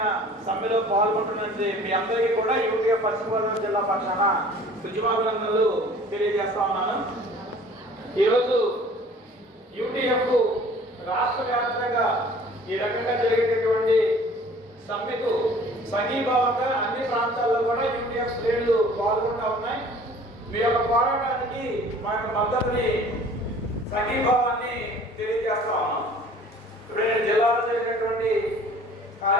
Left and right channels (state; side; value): normal; both; correlation 0.49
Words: సమ్మెలో పాల్గొంటున్నది మీ అందరికీ కూడా యూటీఎఫ్ పశ్చిమ గోదావరి జిల్లా పక్షాన ఉద్యమాభినందనలు తెలియజేస్తా ఉన్నాను. ఈరోజు యూటీఎఫ్ రాష్ట్ర వ్యాప్తంగా ఈ రకంగా జరిగేటటువంటి సమ్మెకు సంఘీభావంగా అన్ని ప్రాంతాల్లో కూడా యూటీఎఫ్ శ్రేణులు పాల్గొంటూ ఉన్నాయి. మీ యొక్క పోరాటానికి మా యొక్క మద్దతుని సంఘీభావాన్ని తెలియజేస్తా ఉన్నాం. ఇప్పుడు నేను జిల్లాలో జరిగినటువంటి